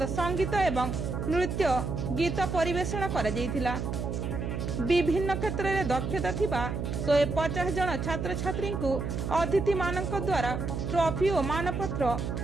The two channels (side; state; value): right; noise; hum, 3 dB below the sound